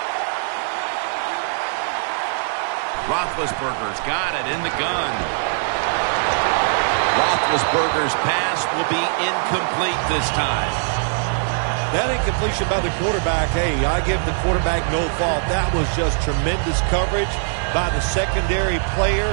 Roethlisberger's got it in the gun. Roethlisberger's pass will be incomplete this time. That incompletion by the quarterback, hey, I give the quarterback no fault. That was just tremendous coverage by the secondary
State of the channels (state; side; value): silent; left; 65 dB below the other